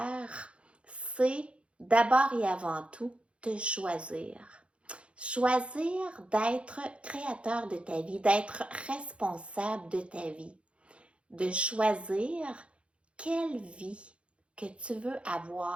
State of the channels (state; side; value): late; left; 0.060 ms